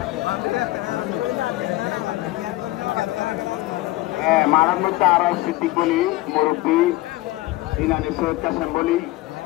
মারার মধ্যে আরো সিদ্দিক বলি মুরব্বী ইনানি সৈয়দ কাসেম বলি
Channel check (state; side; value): quieter; right; 18.6 dB